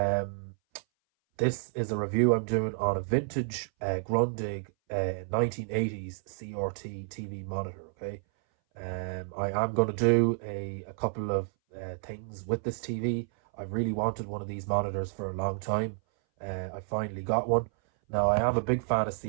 this is a review I'm doing on a vintage Grundig 1980s CRT TV monitor. Okay, I am going to do a couple of things with this TV. I've really wanted one of these monitors for a long time. I finally got one. Now I am a big fan of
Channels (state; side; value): silent; left; 58 dB below the other